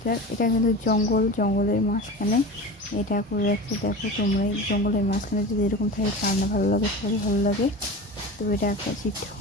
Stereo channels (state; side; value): normal; both; correlation 0.31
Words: এটা কিন্তু জঙ্গলের মাঝখানে এটা করে রাখছে। দেখো তোমরা এই জঙ্গলের মাঝখানে যদি এরকম থাকে কার না ভালো লাগে, সবারই ভালো লাগে। তো এটা একটা শিব